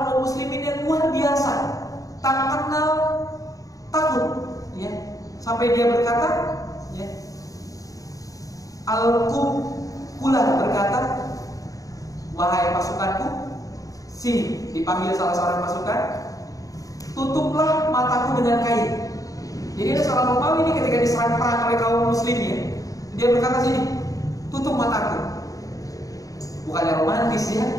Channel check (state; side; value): late; right; 0.17 ms